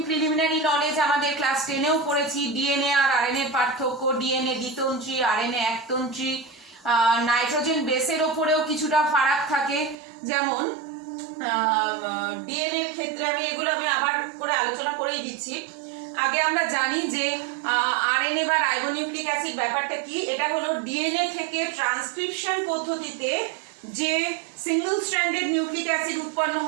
প্রিলিমিনারি নলেজ আমাদের ক্লাস 10এও পড়েছি। ডিএনএ আর আরএনএ পার্থক্য, ডিএনএ দ্বিতন্ত্রী, আরএনএ একতন্ত্রী, নাইট্রোজেন বেসের ওপরেও কিছুটা ফারাক থাকে। যেমন ডিএনএ এর ক্ষেত্রে আমি আবার করে আলোচনা করেই দিচ্ছি। আগে আমরা জানি যে আরএনএ বা রাইবোনিউক্লিক অ্যাসিড ব্যাপারটা কি। এটা হলো ডিএনএ থেকে ট্রান্সক্রিপশন পদ্ধতিতে যে সিঙ্গেল স্ট্র্যান্ডেড নিউক্লিক অ্যাসিড উৎপন্ন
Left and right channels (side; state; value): left; drops out; at 10.0 s